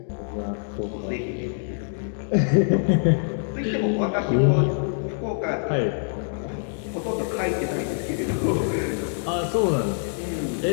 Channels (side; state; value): right; silent; digital silence